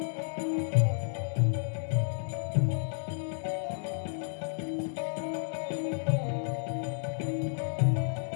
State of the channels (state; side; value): silent; right; digital silence